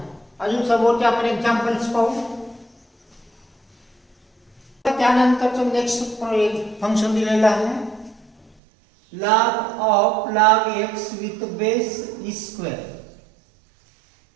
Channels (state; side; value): drops out; left; at 8.6 s